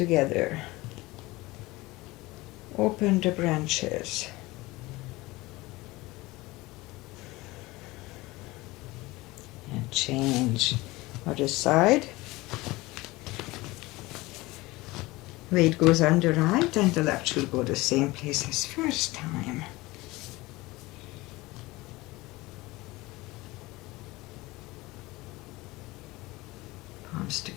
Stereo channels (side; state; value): right; quieter; 20.8 dB